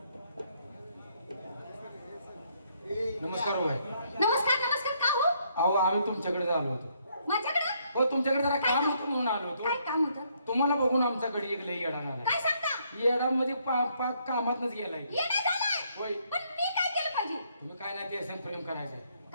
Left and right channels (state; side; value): inverted; both; correlation -0.70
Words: नमस्कार हो बाई. नमस्कार का हो? अहो आम्ही तुमच्याकडे आलो होतो. माझ्याकडे? हो तुमच्याकडे जरा काम होतं म्हणून आलो होतो. काय काम होतं? तुम्हाला बघून आमच्याकडे एक लई येडा आला. काय सांगता? येडामध्ये पाक कामातच गेलाय. येडा झालाय? होय. पण मी काय केलं पाहिजे? तुम्ही काय नाही ते प्रेम करायचंय.